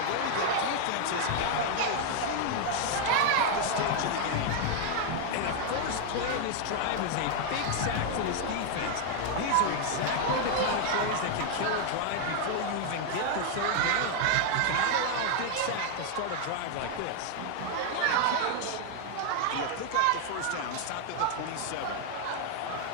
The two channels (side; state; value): both; different; correlation 0.01